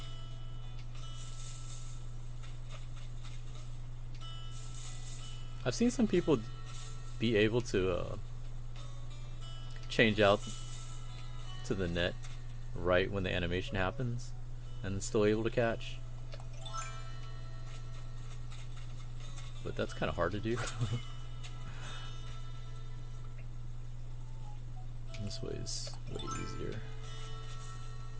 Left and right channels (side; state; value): both; identical; correlation 1.00